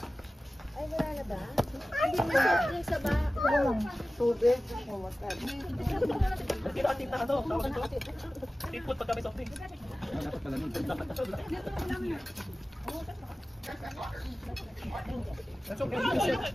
Tipot pagka may soft drink. That's okay.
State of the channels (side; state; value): both; normal; correlation 0.96